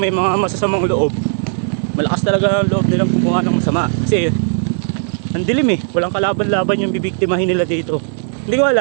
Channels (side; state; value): left; silent; digital silence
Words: mga masasamang loob, malakas talaga ang loob nilang gumawa ng masama. Kasi ang dilim eh, walang kalaban-laban yung bibiktimahin nila dito. Hindi ko